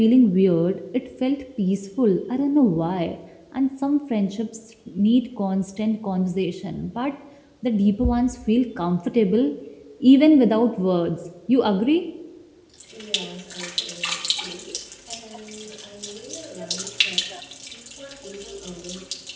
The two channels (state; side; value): identical; both; correlation 1.00